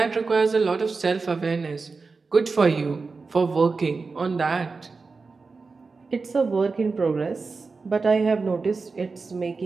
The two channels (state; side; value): quieter; left; 4.3 dB